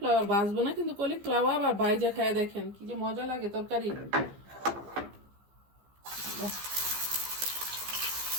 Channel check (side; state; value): left; late; 15 ms